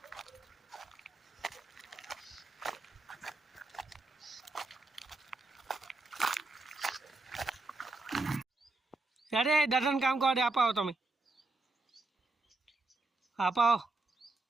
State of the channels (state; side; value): quieter; left; 3.2 dB